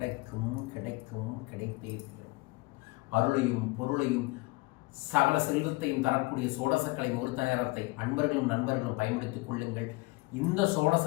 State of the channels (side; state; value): right; quieter; 24.5 dB